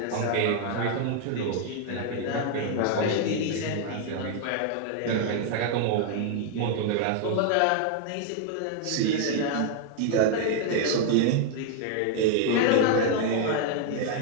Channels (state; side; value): different; both; correlation 0.00